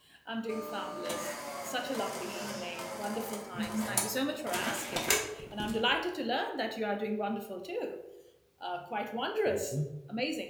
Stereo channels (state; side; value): identical; both; correlation 1.00